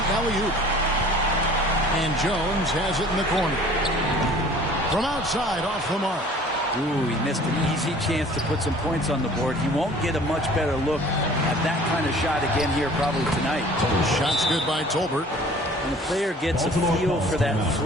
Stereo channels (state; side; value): normal; both; correlation 0.49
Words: alley-oop. And Jones has it in the corner. From outside, off the mark. Ooh, he missed an easy chance to put some points on the board. He won't get a much better look at that kind of shot again here probably tonight. Shot's good by Tolbert. When a player gets a feel for that